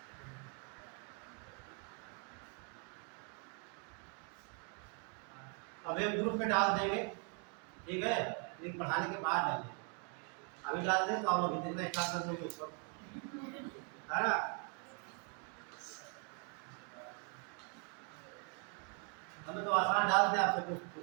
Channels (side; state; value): left; quieter; 38.7 dB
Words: अब एक ग्रुप में डाल देंगे, ठीक है, लेकिन पढ़ाने के बाद डालेंगे। अभी डाल दें तो आप लोग हिंदी में स्टार्ट कर देंगे ऊपर, है ना। हमें तो आसान डाल दें, आप सब